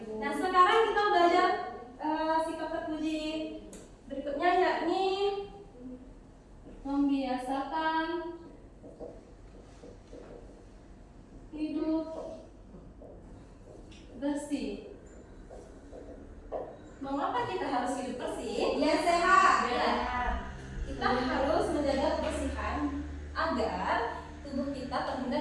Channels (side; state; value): both; identical; correlation 1.00